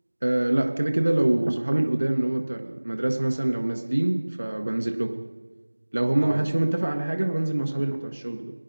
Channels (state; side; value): inverted; both; correlation -1.00